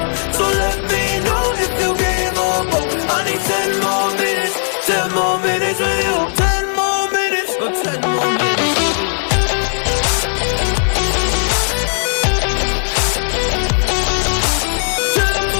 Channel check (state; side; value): silent; right; digital silence